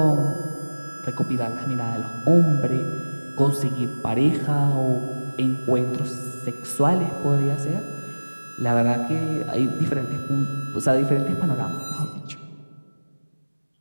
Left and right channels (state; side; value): inverted; both; correlation -1.00